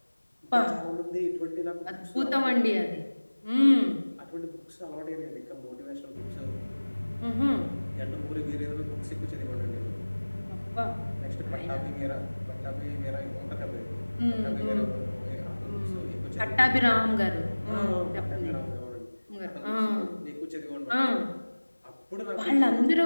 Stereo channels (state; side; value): inverted; both; correlation -1.00